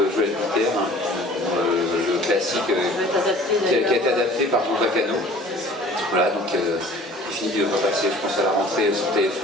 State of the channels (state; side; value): normal; both; correlation 0.48